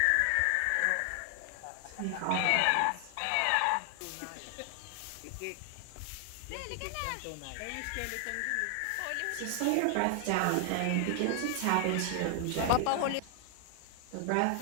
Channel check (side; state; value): both; different; correlation 0.00